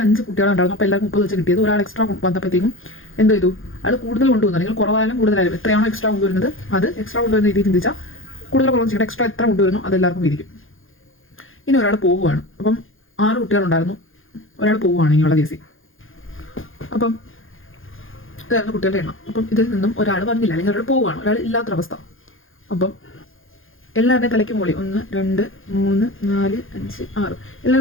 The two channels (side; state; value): right; late; 0.59 ms